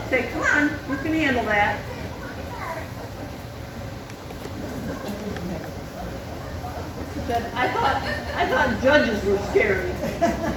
Say, come on, you can handle that. I thought judges were scary.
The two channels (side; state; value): both; identical; correlation 1.00